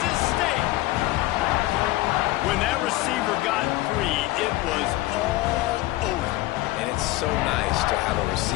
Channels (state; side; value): quieter; right; 17.9 dB